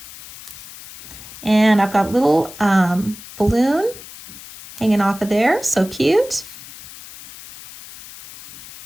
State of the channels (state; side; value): noise; left; hiss, 16 dB below the sound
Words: And I've got a little balloon hanging off of there. So cute.